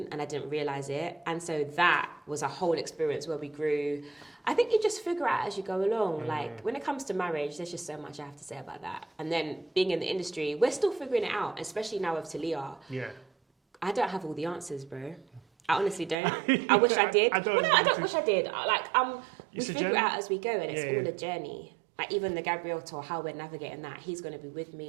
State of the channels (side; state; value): left; drops out; at 16.2 s